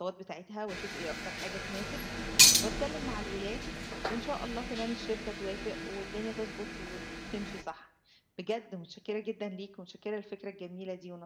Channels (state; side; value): identical; both; correlation 1.00